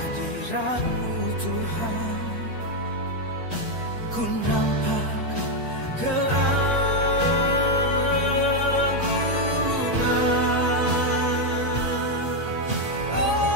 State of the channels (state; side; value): normal; both; correlation 0.03